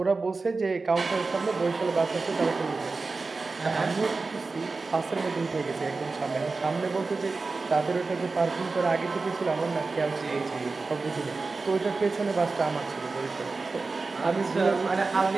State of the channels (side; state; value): left; quieter; 3.9 dB